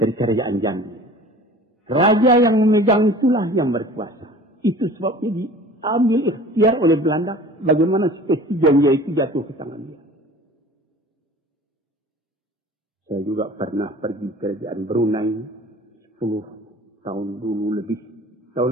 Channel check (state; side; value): normal; both; correlation 0.44